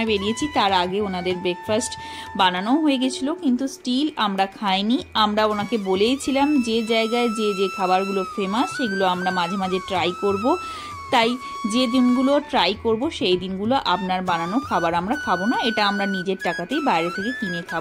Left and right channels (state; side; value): identical; both; correlation 1.00